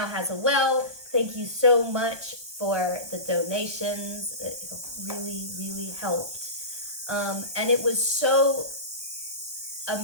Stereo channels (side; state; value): left; late; 1.2 ms